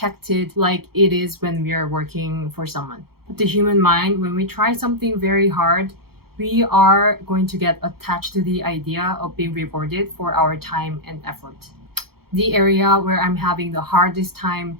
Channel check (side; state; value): left; late; 0.95 ms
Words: like it is when we are working for someone. But the human mind, when we try something very hard, we are going to get attached to the idea of being rewarded for our time and effort. The area where I'm having the hardest time